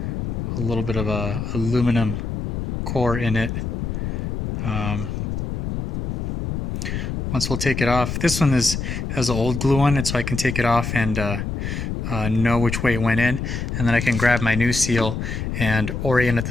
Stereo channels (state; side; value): noise; left; rumble, 3 dB below the sound